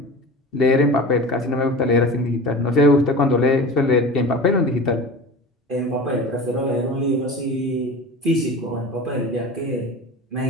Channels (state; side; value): normal; both; correlation 0.34